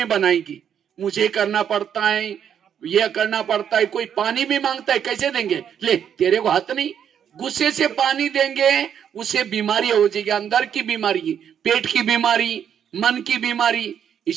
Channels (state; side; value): quieter; left; 8.6 dB